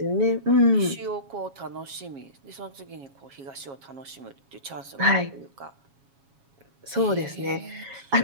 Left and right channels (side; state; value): left; late; 7.3 ms